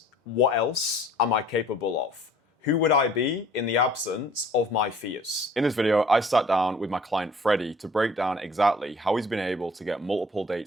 what else am I capable of? Who would I be in the absence of my fears? In this video, I sat down with my client Freddie to break down exactly how he's been able to get multiple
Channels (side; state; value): both; normal; correlation 0.53